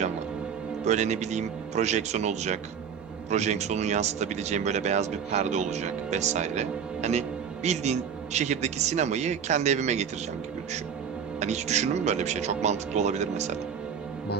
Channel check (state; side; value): quieter; left; 7.3 dB